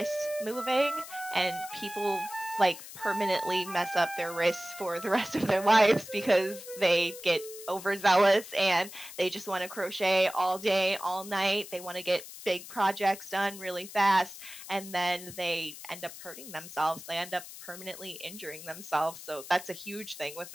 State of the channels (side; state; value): left; noise; hiss, 14 dB below the sound